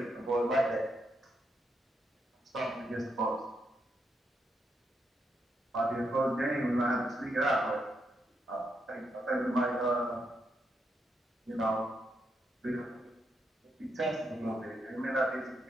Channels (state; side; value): normal; both; correlation 0.80